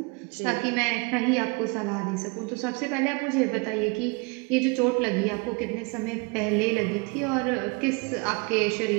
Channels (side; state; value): left; quieter; 30.4 dB